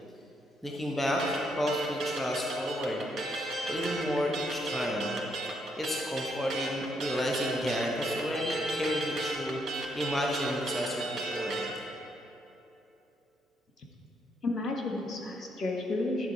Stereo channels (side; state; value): both; normal; correlation 0.75